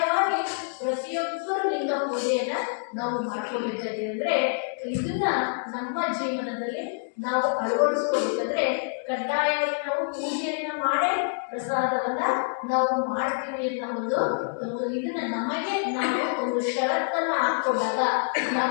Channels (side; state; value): right; silent; digital silence